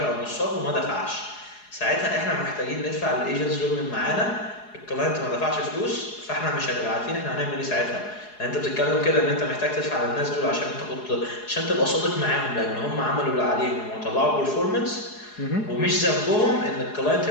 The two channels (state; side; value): late; right; 4.8 ms